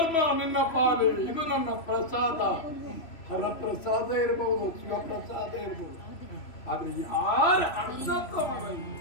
ನಿನ್ನ ಪಾಲೆ, ಇದು ನನ್ನ ಪ್ರಸಾದ. ಹರಪ್ರಸಾದ ಇರಬಹುದು, ಶಿವಪ್ರಸಾದ ಇರಬಹುದು, ಆದ್ರೆ ಯಾರ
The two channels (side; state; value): right; late; 3.0 ms